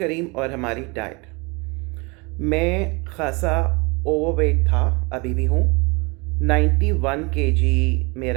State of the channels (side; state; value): left; quieter; 28.2 dB